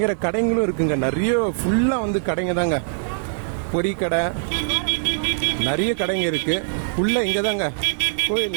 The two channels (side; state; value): left; silent; digital silence